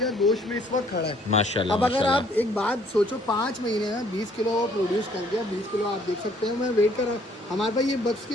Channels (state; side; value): normal; both; correlation 0.62